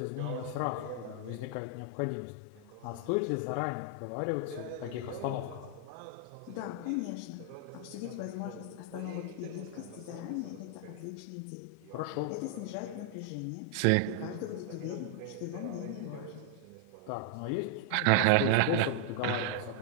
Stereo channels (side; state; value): both; different; correlation 0.00